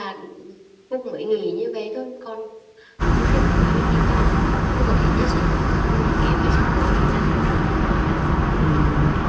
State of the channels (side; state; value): both; identical; correlation 1.00